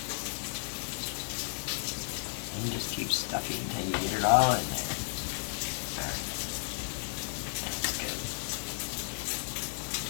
And just keep stuffing until you get it all in there. Alright. That's good.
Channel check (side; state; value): right; silent; digital silence